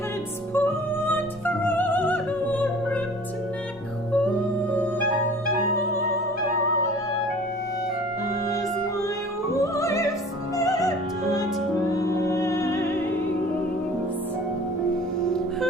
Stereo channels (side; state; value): both; normal; correlation 0.46